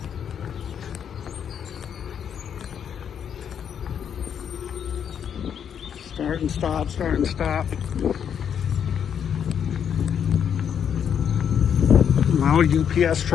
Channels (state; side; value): quieter; right; 8.2 dB